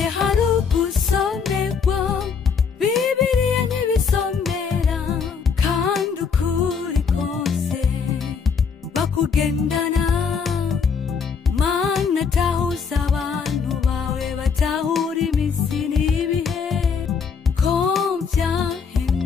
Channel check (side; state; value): right; quieter; 6.0 dB